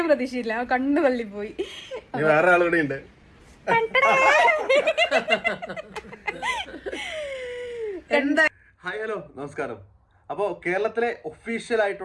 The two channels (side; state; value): both; identical; correlation 1.00